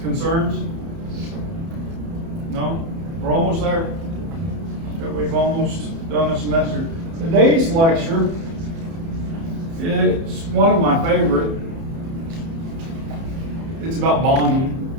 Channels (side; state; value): left; late; 30 ms